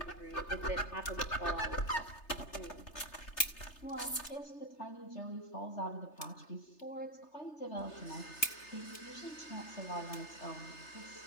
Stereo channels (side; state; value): right; late; 3.3 ms